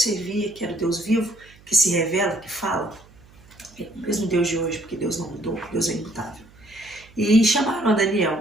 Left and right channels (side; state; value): right; noise; hum, 25 dB below the sound